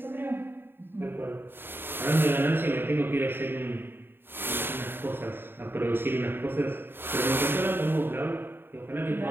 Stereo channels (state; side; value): late; left; 0.10 ms